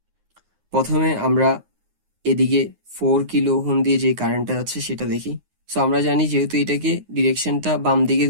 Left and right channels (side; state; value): left; late; 9.6 ms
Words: প্রথমে আমরা এদিকে 4 কিলো ওহম দিয়ে যে কারেন্টটা যাচ্ছে সেটা দেখি। সো আমরা জানি যেহেতু এটাকে ডিরেকশনটা বাম দিকে